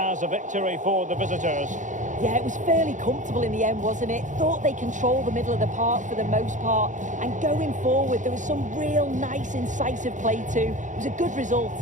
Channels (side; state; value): left; late; 0.36 ms